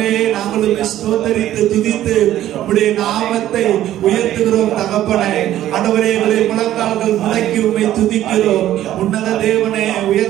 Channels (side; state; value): left; quieter; 12.9 dB